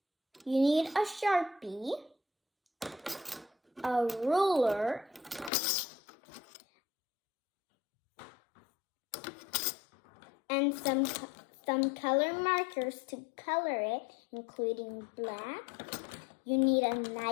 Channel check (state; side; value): drops out; right; at 5.5 s